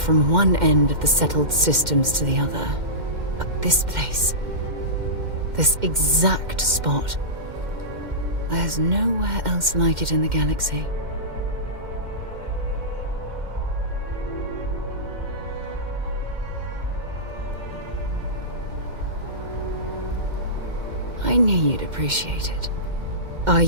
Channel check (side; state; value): left; late; 2.1 ms